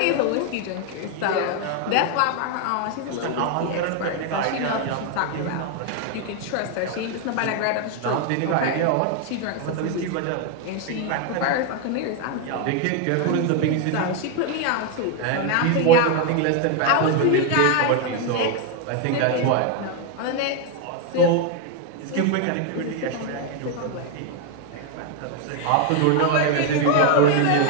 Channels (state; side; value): different; both; correlation 0.01